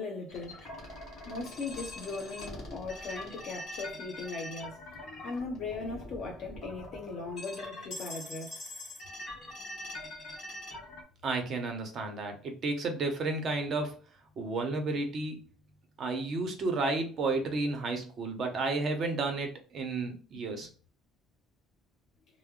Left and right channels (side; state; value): both; normal; correlation 0.58